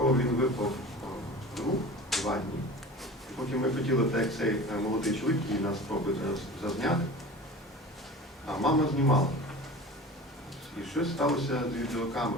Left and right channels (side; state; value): both; normal; correlation 0.37